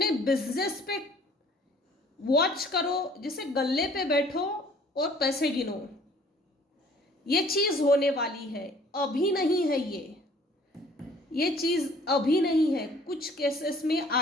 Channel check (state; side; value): normal; both; correlation 0.55